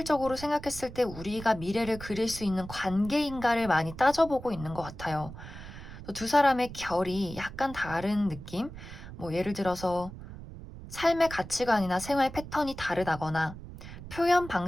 생각했을 때 우리가 미래를 그릴 수 있는 관계인가를 많이 따져보고 있는 것 같아요. 두 사람의 결이 약간 다른 느낌? 뭐 예를 들어서 삶의 가치관이나 생활 패턴이 다르다거나 표현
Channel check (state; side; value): noise; right; rumble, 13 dB below the sound